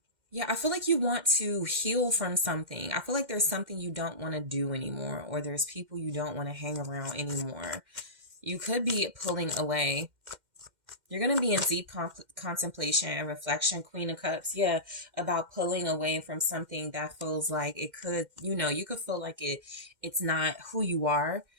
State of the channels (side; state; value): left; late; 2.1 ms